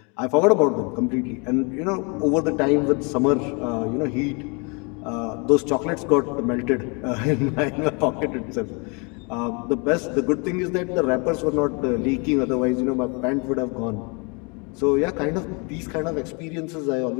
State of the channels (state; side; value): quieter; right; 32.4 dB